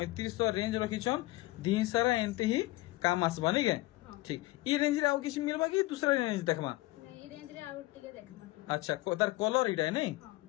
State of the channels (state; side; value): quieter; right; 19.3 dB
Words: रेंज रखिछन दी सारा एंते ही काम आसबा नहीं के ठीक ई रेंज रे आउ किछ मिलबा कि दूसरा रेंज देखमा नहीं रेंज रे आउ टिके देखमा अच्छा तार कलर इटा है नहीं